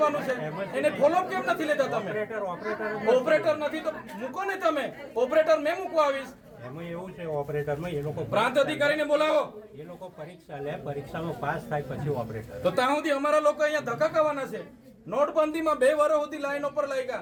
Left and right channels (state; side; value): identical; both; correlation 1.00